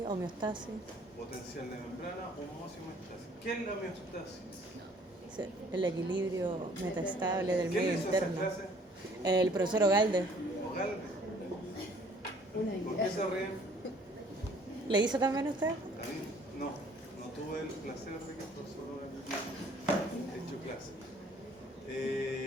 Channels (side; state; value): both; normal; correlation 0.57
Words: homeostasis. Potencial de membrana, osmosis y homeostasis. ¿Qué es la homeostasis? El equilibrio metaestable del ¿Quién medio hizo esa interno. clase? El profesor Ogalde. Ogalde. ¿Por qué se ríen? ¿Le hizo también usted? A mí no tuve el placer de que el profesor haya hecho clase.